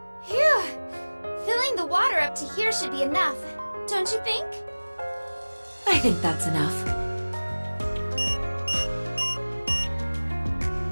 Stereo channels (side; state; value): both; inverted; correlation -1.00